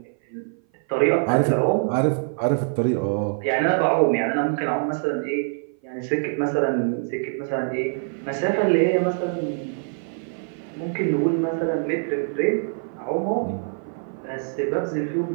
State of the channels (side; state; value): left; silent; 57 dB below the other